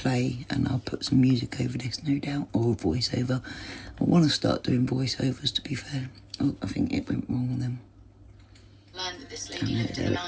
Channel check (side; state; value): both; identical; correlation 1.00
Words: and I'll put some music over this, no doubt, or voiceover. I want to start doing voiceovers, to be fair. Oh, I think it went wrong with them. Learned that this lady lived in the